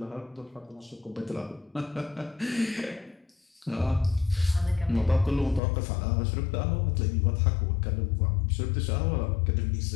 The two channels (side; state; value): right; drops out; at 5.6 s